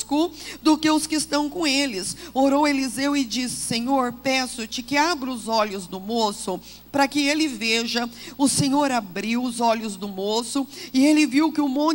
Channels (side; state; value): both; identical; correlation 1.00